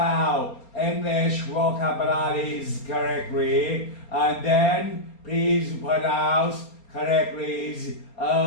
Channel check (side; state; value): right; late; 4.3 ms